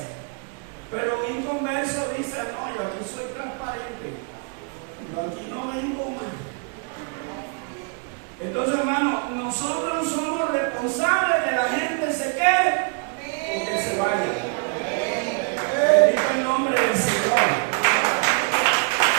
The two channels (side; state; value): left; quieter; 36.9 dB